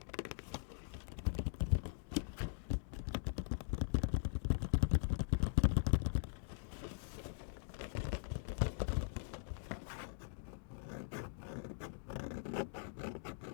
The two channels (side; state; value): right; silent; digital silence